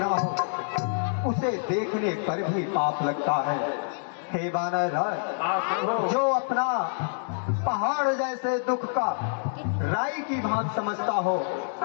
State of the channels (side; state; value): right; silent; digital silence